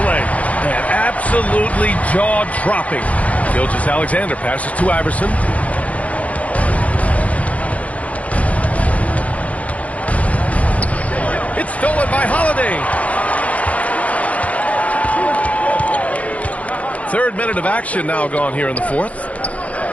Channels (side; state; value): right; late; 0.068 ms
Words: play. And absolutely jaw-dropping. Gilgeous-Alexander passes to Iverson. It's stolen by Holiday. 3rd minute of action now gone here in the 4th.